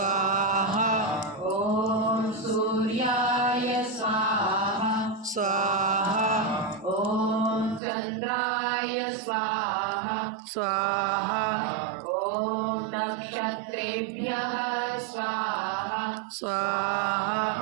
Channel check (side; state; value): left; drops out; at 7.8 s